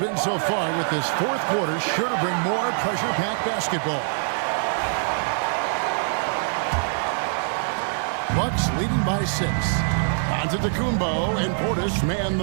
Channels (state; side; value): silent; left; digital silence